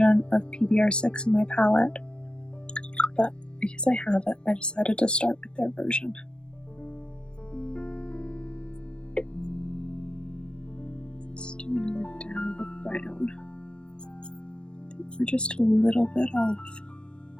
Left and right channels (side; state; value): right; late; 0.055 ms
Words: of PBR6 in my palette, but because I have it, I decided to start with their version. Let's do another dab of brown. I think we're just a little bit off.